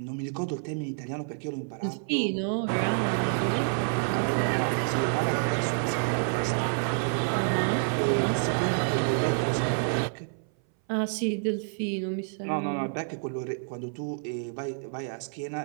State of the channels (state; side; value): silent; left; 59 dB below the other